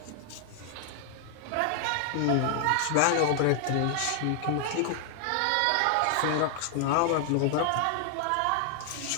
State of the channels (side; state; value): both; different; correlation 0.00